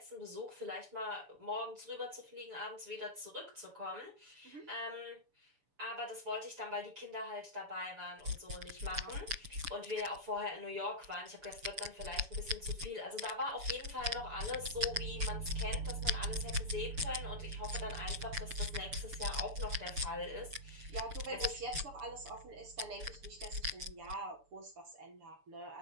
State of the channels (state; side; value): late; left; 6.9 ms